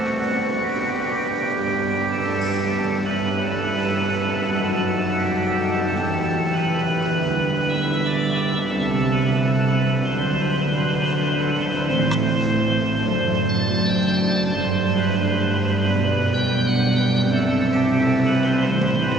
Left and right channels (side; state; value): both; normal; correlation 0.64